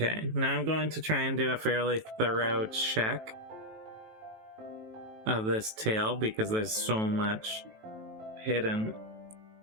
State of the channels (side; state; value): left; late; 18 ms